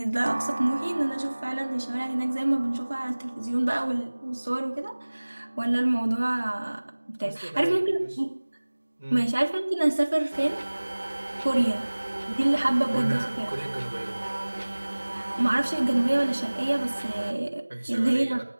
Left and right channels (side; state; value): both; inverted; correlation -1.00